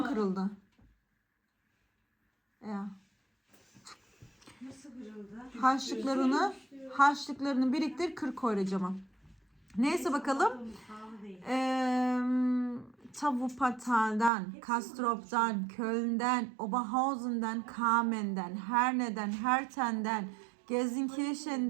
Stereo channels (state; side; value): drops out; left; at 14.3 s